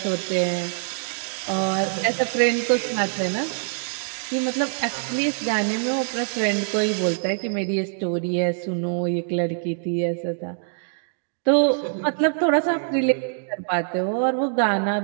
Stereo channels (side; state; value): left; silent; digital silence